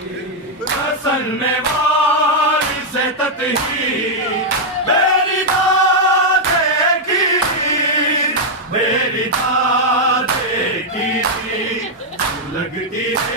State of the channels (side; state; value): both; normal; correlation -0.02